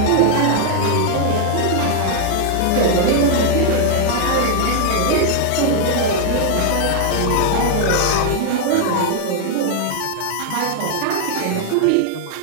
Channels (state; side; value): different; both; correlation 0.00